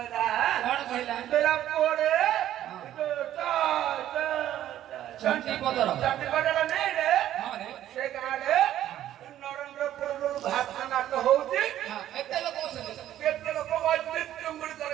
কোন কইলা বেলা পড়ে চন্টি পদর নেই রে হ্যাঁ রে সে গাড়ে নরেন্দ্রপুর ভাত নাট হউছি হ্যাঁ এতে লোক কেতে লোক বাজে চুঙ্গুড়ি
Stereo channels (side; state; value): left; quieter; 12.3 dB